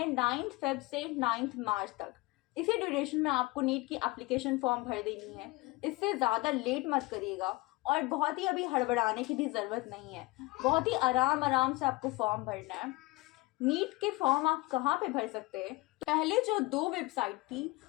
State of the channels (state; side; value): quieter; right; 22.4 dB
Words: 9 फेब से 9 मार्च तक। इसी ड्यूरेशन में आपको नीट की एप्लीकेशन फॉर्म भर देनी है। इससे ज़्यादा लेट मत करिएगा और बहुत ही अभी हड़बड़ाने की भी ज़रूरत नहीं है। बहुत ही आराम से आपको फॉर्म भरना है। नीट के फॉर्म आप कहाँ पे भर सकते हैं? पहले जो दो वेबसाइट थी,